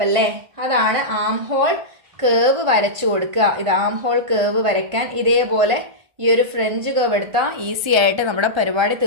അല്ലേ, അതാണ് ആം ഹോൾ കേവ് വരച്ചു കൊടുക്കുക. ഇത് ആം ഹോൾ കേവ് വരയ്ക്കാൻ ഇതേപോലെ ഈ ഒരു ഫ്രഞ്ച് കേവ് എടുത്താൽ ഈസി ആയിട്ട് നമ്മുടെ പരിപാടി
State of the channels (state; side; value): late; left; 1.3 ms